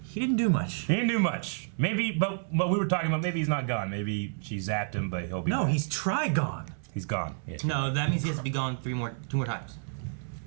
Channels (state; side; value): silent; left; 58 dB below the other